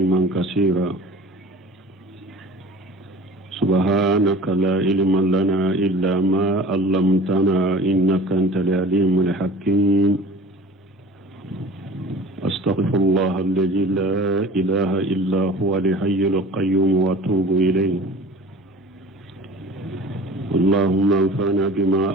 كثيرا. سبحانك لا علم لنا إلا ما علمتنا إنك أنت العليم الحكيم. أستغفر الله الذي لا إله إلا هو الحي القيوم وأتوب إليه. اللهم انفعنا بما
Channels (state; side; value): normal; both; correlation 0.42